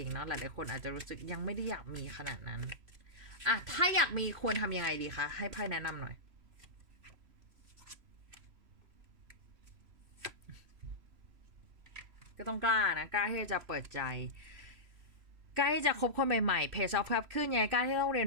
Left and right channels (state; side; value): late; left; 3.0 ms